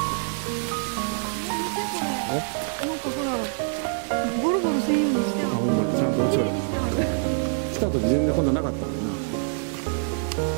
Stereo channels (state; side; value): silent; left; digital silence